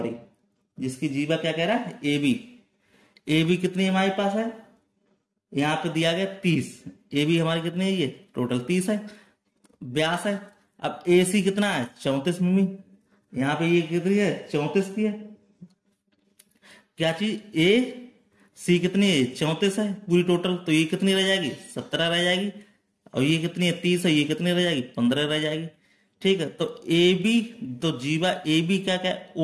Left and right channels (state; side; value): identical; both; correlation 1.00